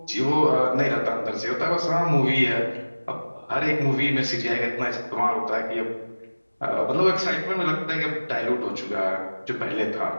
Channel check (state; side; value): inverted; both; correlation -1.00